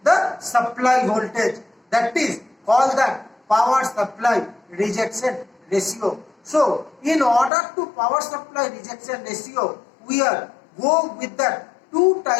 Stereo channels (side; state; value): right; drops out; at 7.5 s